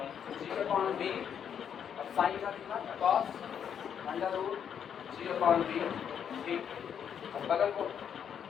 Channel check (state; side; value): quieter; right; 8.3 dB